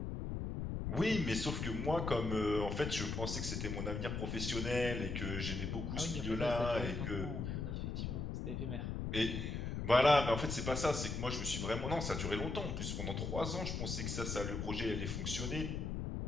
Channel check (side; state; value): left; noise; rumble, 3 dB below the sound